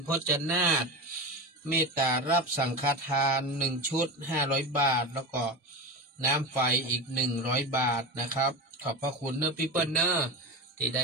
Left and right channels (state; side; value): normal; both; correlation 0.24